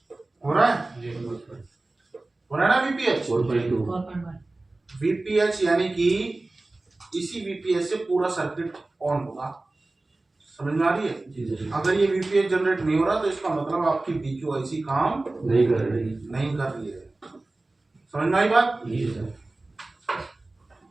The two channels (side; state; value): left; quieter; 3.0 dB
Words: हो रहा है? हो रहा है ना VPH? 4.2 VPH यानी कि इसी VPH से पूरा सर्किट ऑन होगा। समझ में आ रही है? अगर ये VPH जनरेट नहीं हो रहा तो इसका मतलब आपकी BQ IC काम नहीं कर रही। नहीं कर रही है। समझ में आई बात?